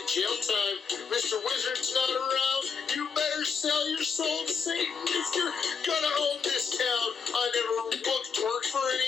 jail time, Mr. Wizard's not around, you better sell your soul to Satan if you're gonna own this town. I never worked for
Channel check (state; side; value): quieter; right; 5.8 dB